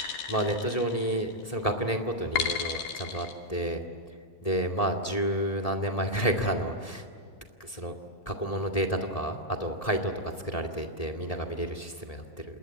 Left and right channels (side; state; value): right; late; 1.7 ms